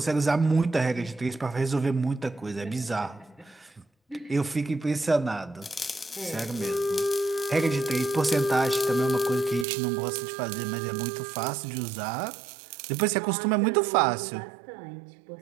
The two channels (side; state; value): left; drops out; at 9.7 s